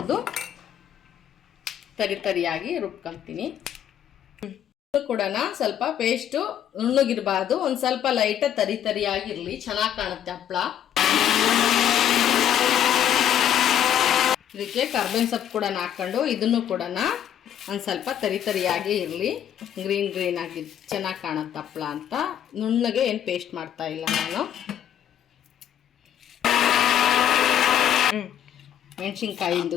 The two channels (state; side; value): quieter; right; 10.2 dB